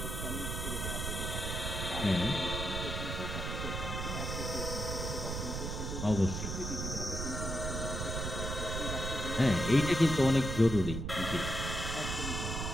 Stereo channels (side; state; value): right; noise; rumble, 3 dB below the sound